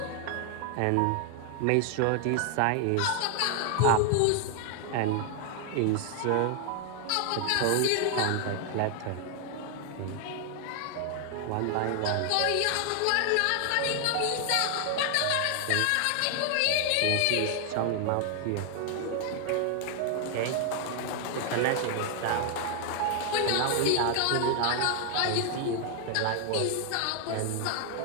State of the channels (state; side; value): different; both; correlation 0.00